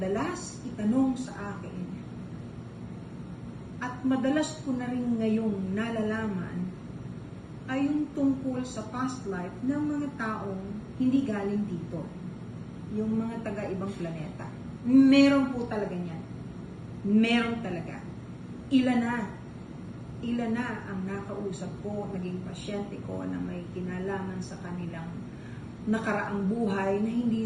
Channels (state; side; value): identical; both; correlation 1.00